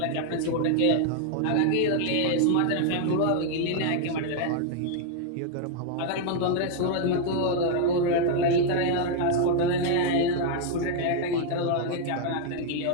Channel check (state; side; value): different; both; correlation 0.00